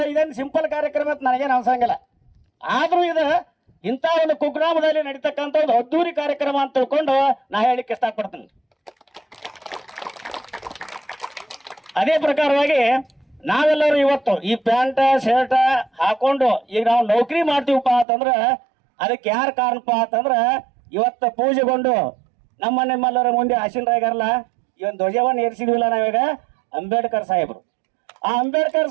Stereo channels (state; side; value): drops out; left; at 18.1 s